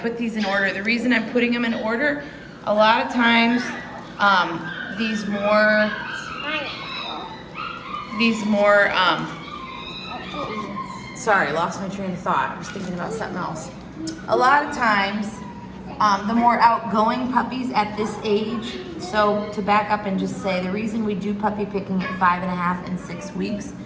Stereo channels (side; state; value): both; identical; correlation 1.00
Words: these in order. The reason I'm putting them in order, a lot of times these more, sorry, lost my train of thought. I was thinking about something else. A lot of times, the more outgoing puppies at this age, so to back up and just say, the reason we do puppy picking at 5.5 and 6 weeks